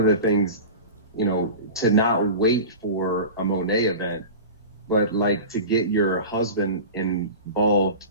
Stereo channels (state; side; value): inverted; both; correlation -0.32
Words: the things, to not wait for a Monet event, but like to get your husband involved